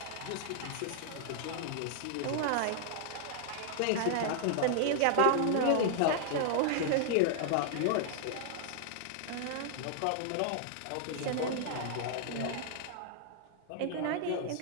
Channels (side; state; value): both; different; correlation 0.00